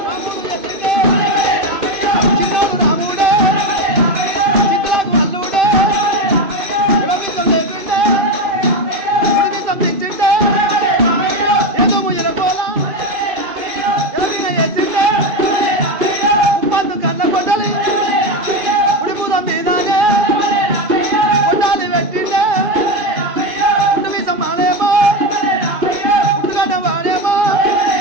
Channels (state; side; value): late; left; 2.5 ms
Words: చిన్నోడు రాముడే చిత్తులకు అల్లుడే విడమిసం లేపిండే విడమిసం తెచ్చిండే ఏదో ఎరగోల ఎరవిన వేసిండే ఉప్పందు కన్న కొట్టలి ఉడిపురం మీదానే కొట్టాలి పెట్టిండే ఉడిమిసం మానేమో ఉట్టుగడ్డ వాడేమో